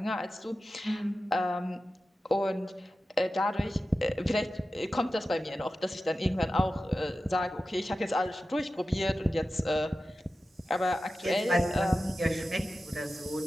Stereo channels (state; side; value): normal; both; correlation 0.93